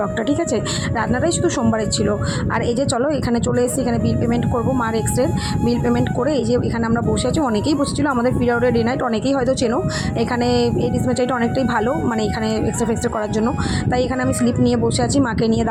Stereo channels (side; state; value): both; identical; correlation 1.00